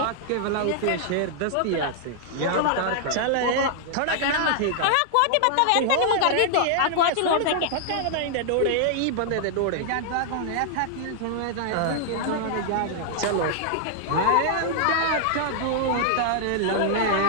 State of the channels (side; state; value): both; different; correlation -0.01